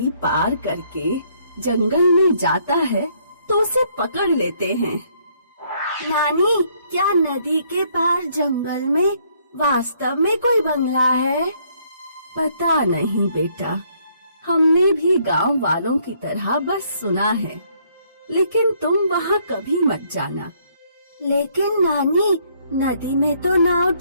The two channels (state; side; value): inverted; both; correlation -0.67